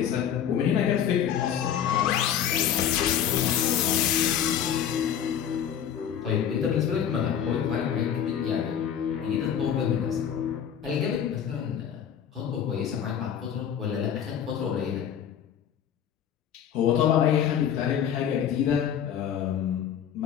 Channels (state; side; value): quieter; right; 9.0 dB